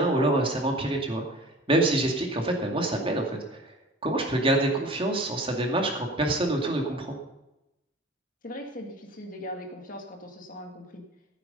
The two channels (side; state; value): both; normal; correlation 0.42